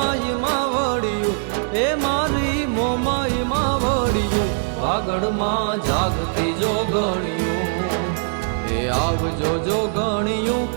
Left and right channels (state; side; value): silent; left; digital silence